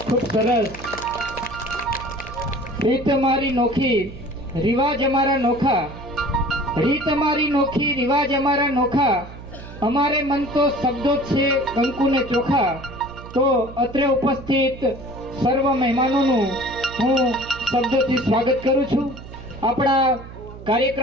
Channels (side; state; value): right; noise; hum, 15 dB below the sound